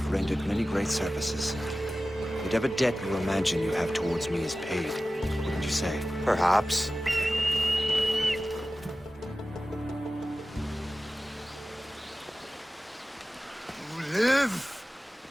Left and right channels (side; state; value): both; normal; correlation 0.95